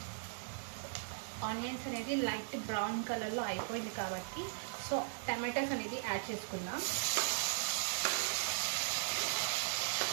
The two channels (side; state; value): left; silent; digital silence